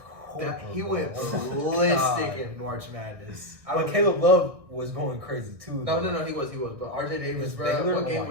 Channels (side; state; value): left; late; 1.6 ms